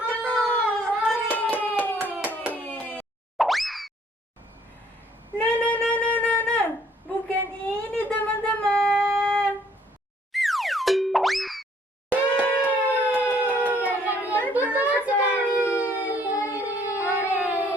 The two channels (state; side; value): normal; both; correlation 0.63